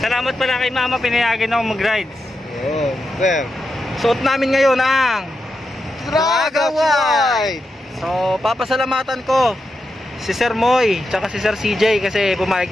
pala kay Mama, pinayagan ako mag-rides. Oh, sir. Suot namin ngayon ang Traga White! So, papasalamatan ko si Sir Moy, tsaka si Sir CJ kasi pumayag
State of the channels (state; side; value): normal; both; correlation 0.87